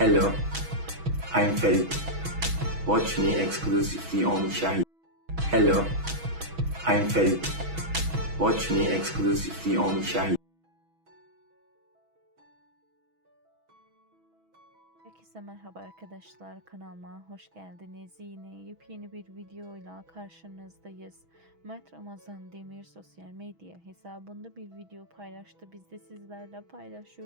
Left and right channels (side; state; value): left; late; 6.2 ms